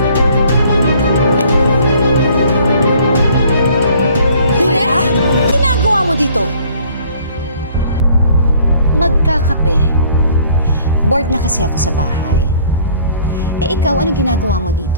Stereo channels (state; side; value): inverted; both; correlation -0.56